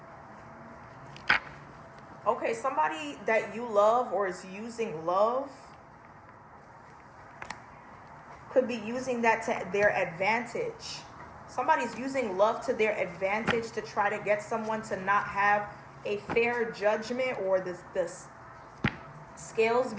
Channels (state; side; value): identical; both; correlation 1.00